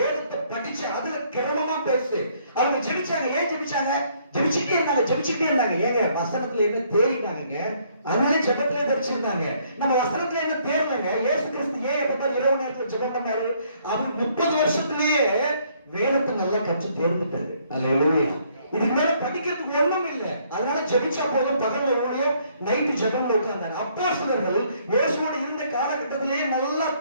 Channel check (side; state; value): both; inverted; correlation -0.66